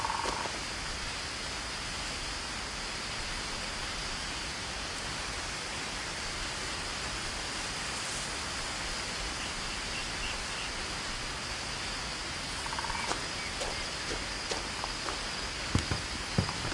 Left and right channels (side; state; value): both; identical; correlation 1.00